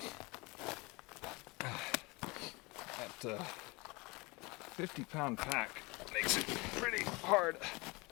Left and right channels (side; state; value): right; quieter; 25.6 dB